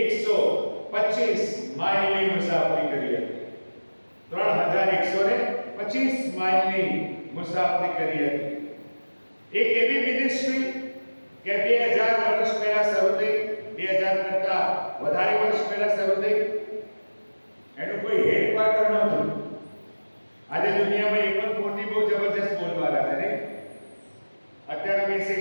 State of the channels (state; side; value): inverted; both; correlation -1.00